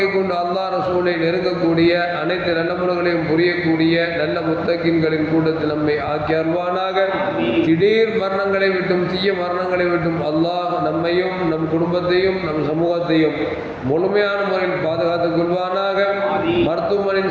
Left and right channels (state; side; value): identical; both; correlation 1.00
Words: கொண்டு அல்லாஹ் ரசூலை நெருங்கக்கூடிய அனைத்து நல்ல முறைகளையும் புரியக்கூடிய நல்ல முத்தகின்களின் கூட நம்மை ஆக்கி அருள்வானாக. திடீர் மரணங்களை விட்டும் தீய மரணங்களை விட்டும் அல்லாஹ் நம்மையும் நம் குடும்பத்தையும் நம் சமூகத்தையும் முழுமையான முறையில் பாதுகாத்துக் கொள்வானாக.